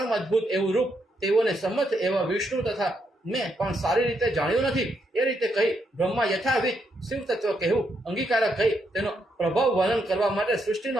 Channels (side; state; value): both; normal; correlation 0.78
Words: અદ્ભુત એવું રૂપ તેઓને સંમત એવા વિષ્ણુ તથા મેં પણ સારી રીતે જાણ્યું નથી. એ રીતે કહી બ્રહ્મા યથાવિધ શિવ તત્વ કહેવું અંગીકારક કહી તેનો પ્રભાવ વર્ણન કરવા માટે સૃષ્ટિનો